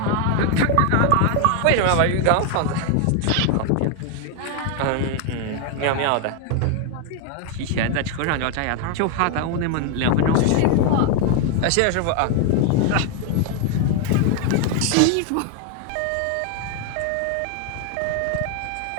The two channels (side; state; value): both; different; correlation 0.01